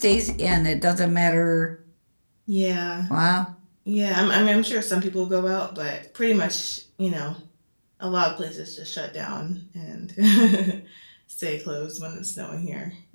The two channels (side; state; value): both; inverted; correlation -1.00